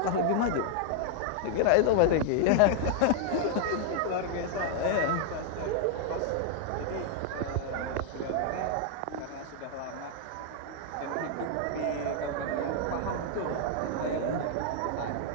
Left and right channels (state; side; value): different; both; correlation 0.00